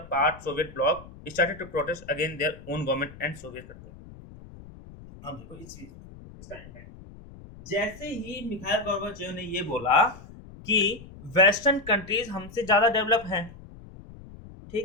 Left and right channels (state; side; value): noise; left; rumble, 18 dB below the sound